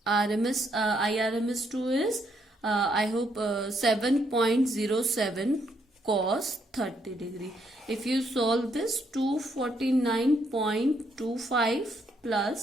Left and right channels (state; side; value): normal; both; correlation 0.73